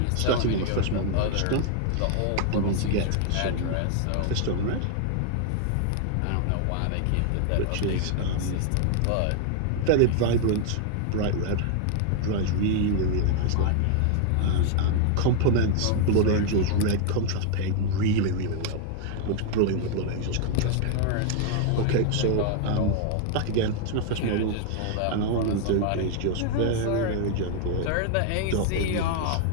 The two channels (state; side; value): different; both; correlation 0.00